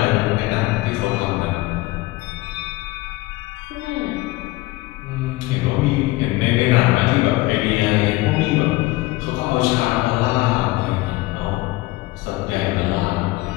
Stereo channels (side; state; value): right; quieter; 20.0 dB